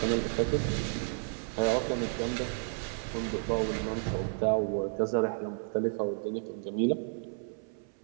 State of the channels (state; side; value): silent; left; 56 dB below the other